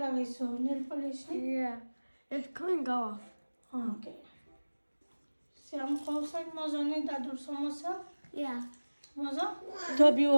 লাগাইছো nail polish Yeah. It's coming off. Okay Shyam Kaushal মজা নেই দাদুর সমস্যা Yeah. মজা তো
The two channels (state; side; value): inverted; both; correlation -1.00